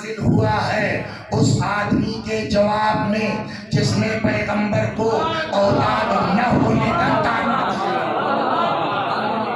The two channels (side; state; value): both; identical; correlation 1.00